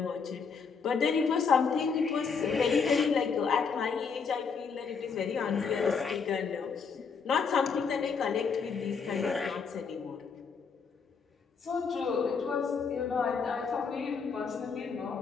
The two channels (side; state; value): right; quieter; 5.6 dB